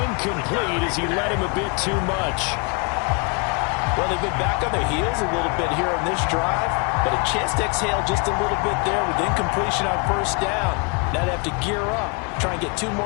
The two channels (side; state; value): right; quieter; 33.4 dB